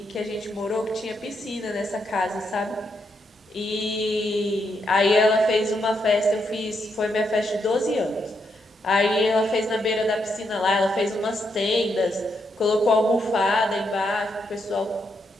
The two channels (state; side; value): normal; both; correlation 0.79